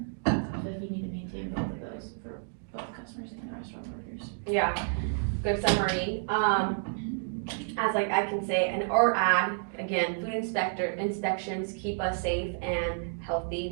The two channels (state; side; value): silent; left; digital silence